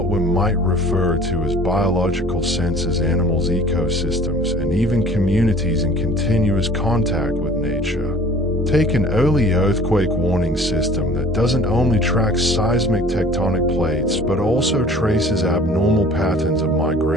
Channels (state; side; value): normal; both; correlation 0.49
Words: we might refer to as biological sensors, animals, ecosystems, and even communities in continuous contact with nature. Take an early earthquake warning system that doesn't only track seismic tectonic plates but also traces abnormal patterns of